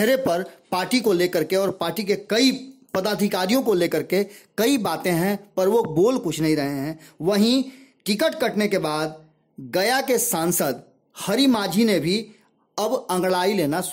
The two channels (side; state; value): both; identical; correlation 1.00